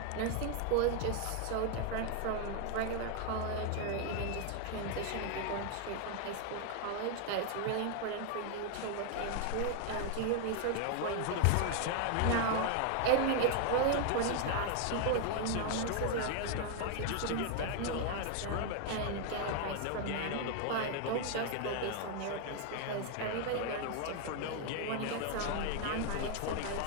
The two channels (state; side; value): different; both; correlation 0.00